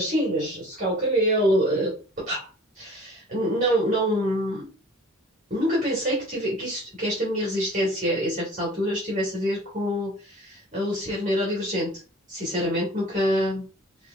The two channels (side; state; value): both; normal; correlation 0.46